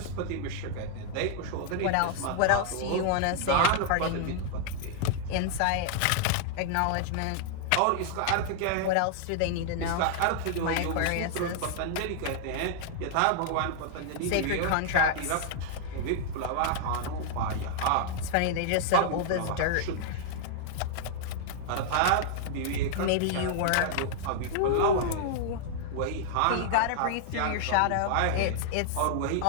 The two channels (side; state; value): both; different; correlation -0.01